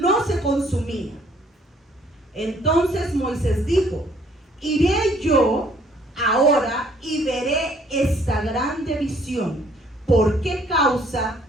se consumía. Entonces Moisés dijo, iré yo ahora y veré esta grande visión. ¿Por qué causa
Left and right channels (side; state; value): both; normal; correlation 0.61